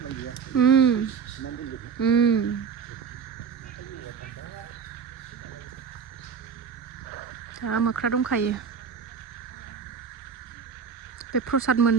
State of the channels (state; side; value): quieter; left; 6.5 dB